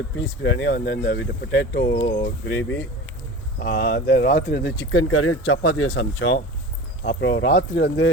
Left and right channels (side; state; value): both; normal; correlation 0.34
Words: பீஸ் பிரியாணி, வந்து இந்த வீட்டு பொட்டேட்டோ கிரேவி, அந்த ராத்திரி வந்து சிக்கன் கறியும் சப்பாத்தியும் சமைச்சோம். அப்புறம் ராத்திரி வந்து